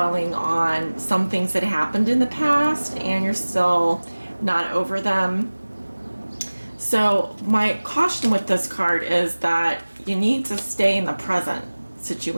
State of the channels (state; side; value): inverted; both; correlation -1.00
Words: on some things that happened in the past and you're still not over them. So my caution with this card is that you need to stay in the present